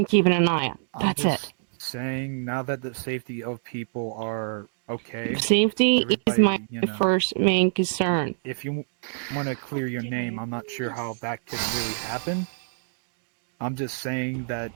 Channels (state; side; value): silent; left; digital silence